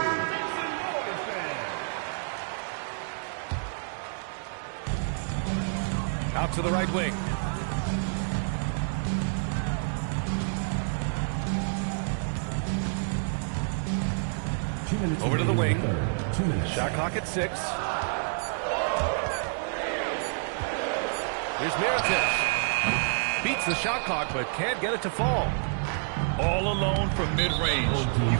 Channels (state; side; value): silent; left; digital silence